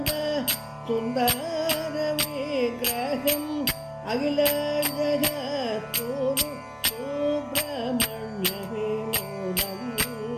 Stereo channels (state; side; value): identical; both; correlation 1.00